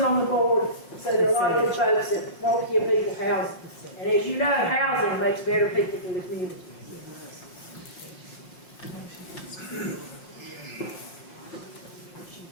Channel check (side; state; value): right; late; 5.6 ms